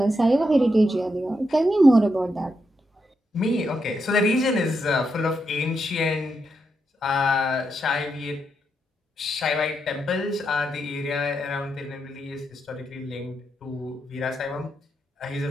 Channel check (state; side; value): normal; both; correlation 0.83